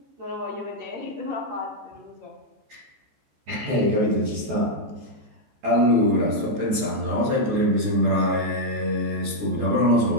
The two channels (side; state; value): left; late; 14 ms